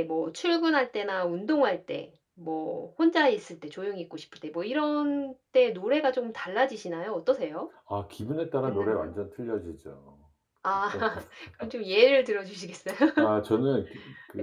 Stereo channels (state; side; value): identical; both; correlation 1.00